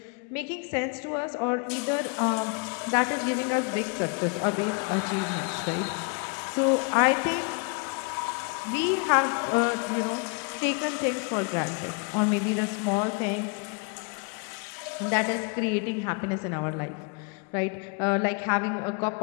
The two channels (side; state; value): right; quieter; 34.1 dB